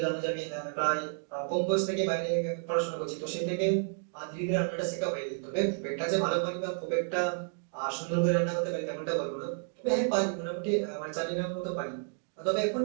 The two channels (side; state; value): left; silent; 57 dB below the other